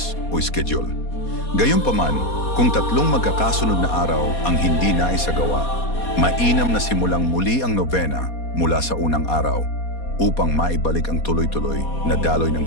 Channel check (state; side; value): late; right; 4.2 ms